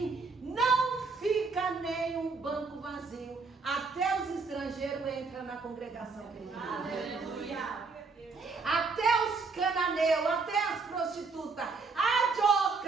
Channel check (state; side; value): quieter; left; 4.3 dB